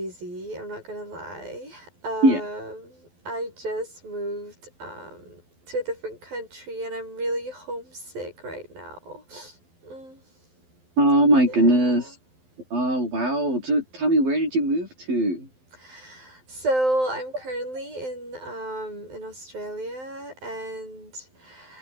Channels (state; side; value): late; left; 12 ms